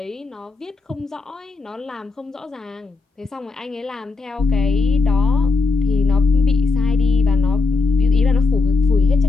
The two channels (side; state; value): right; quieter; 4.0 dB